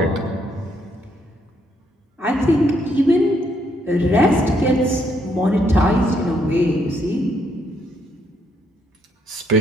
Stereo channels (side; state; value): both; normal; correlation 0.73